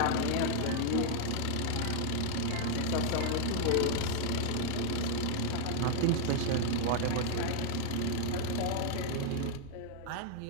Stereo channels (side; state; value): both; different; correlation 0.00